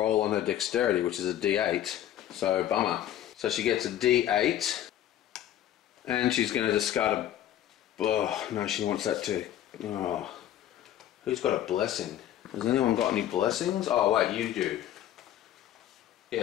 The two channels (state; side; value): quieter; right; 11.8 dB